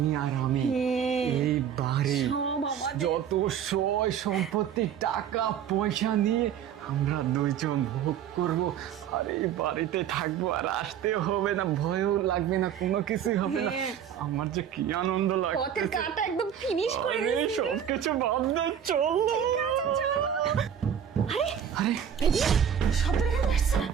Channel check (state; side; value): quieter; left; 8.9 dB